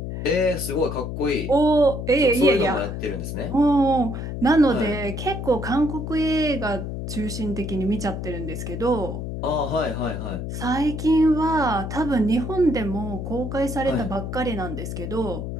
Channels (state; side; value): noise; left; hum, 5 dB below the sound